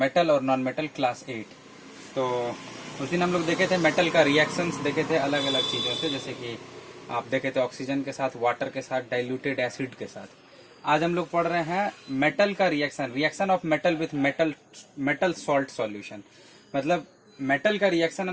और नॉन मेटल क्लास 8। तो उस दिन हम लोग देखे थे मेटल का रिएक्शंस देखे थे अलग अलग चीज़ों से, जैसे कि आप देखे थे ऑक्सीजन के साथ, वाटर के साथ, डाइल्यूटेड एसिड के साथ। आज हम लोग पढ़ रहे हैं मेटल का reaction of metal with metal salt solution. मतलब मेटल का रिएक्शन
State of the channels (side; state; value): both; identical; correlation 1.00